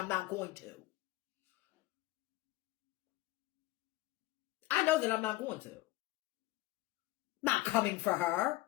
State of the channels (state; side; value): quieter; right; 18.0 dB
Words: not going to. I know that I'm not going to. Not coming for her.